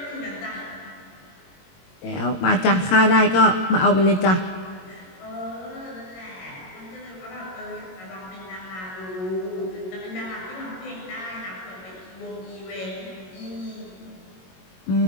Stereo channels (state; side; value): late; right; 22 ms